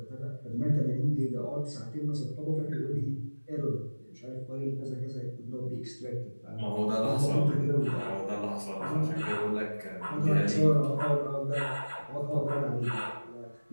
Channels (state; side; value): inverted; both; correlation -1.00